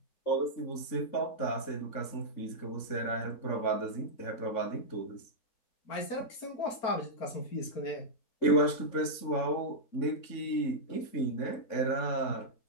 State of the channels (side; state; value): right; late; 3.6 ms